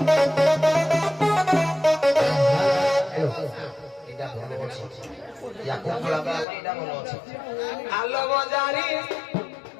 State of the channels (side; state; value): right; drops out; at 6.5 s